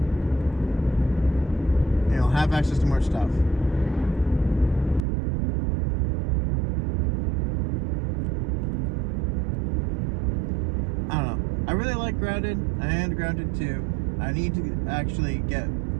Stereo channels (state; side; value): drops out; left; at 5.0 s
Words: And you'll have access to more stuff. I don't know. I really like Grounded and Grounded 2. I need to actually get